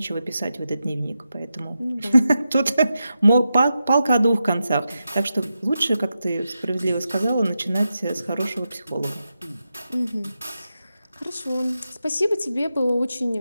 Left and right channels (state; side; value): inverted; both; correlation -0.89